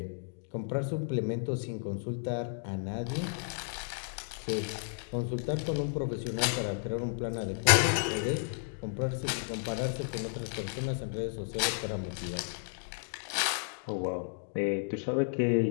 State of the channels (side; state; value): right; silent; digital silence